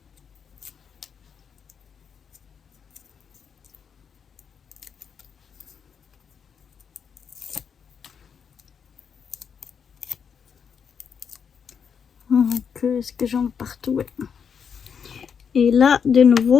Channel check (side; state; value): right; quieter; 6.9 dB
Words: Donc, est-ce que j'en ai partout? Ouais. Et là, de